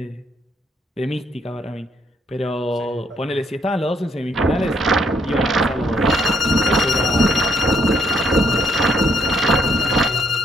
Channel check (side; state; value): both; normal; correlation 0.71